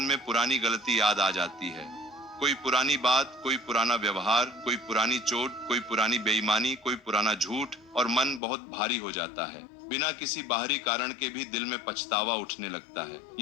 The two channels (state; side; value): drops out; right; at 8.4 s